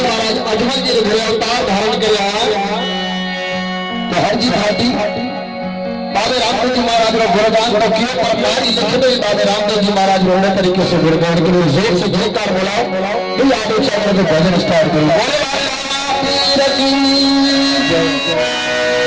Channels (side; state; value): both; identical; correlation 1.00